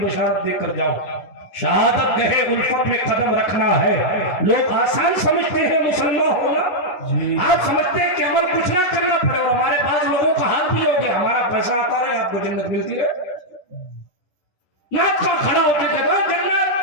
دے کر جاؤں، شہادت گہے الفت میں قدم رکھنا ہے۔ لوگ آسان سمجھتے ہیں مسلمان ہونا، آپ سمجھتے ہیں کہ عمل کچھ نہ کرنا پڑے، اور ہمارے پاس لوگوں کا حال بھی ہو گیا، ہمارا پیسہ آتا رہے آپ کو جنت ملتی رہے، ناک کا کھڑا ہوتے کہتا ہے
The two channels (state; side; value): late; right; 11 ms